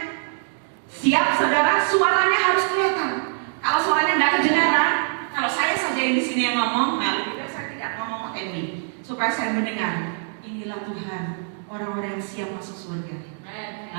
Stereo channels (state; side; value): silent; left; 63 dB below the other